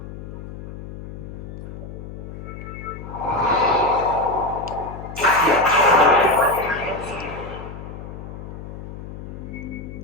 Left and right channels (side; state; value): left; noise; hum, 11 dB below the sound